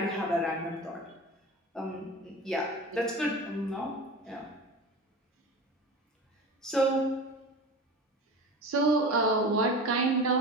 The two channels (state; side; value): normal; both; correlation 0.32